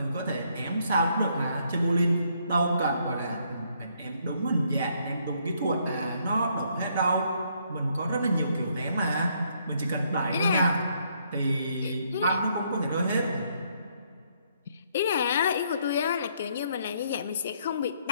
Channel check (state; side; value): inverted; both; correlation -0.70